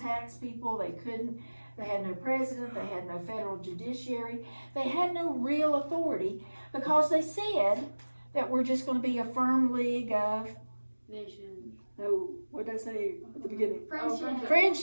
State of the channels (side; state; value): both; inverted; correlation -1.00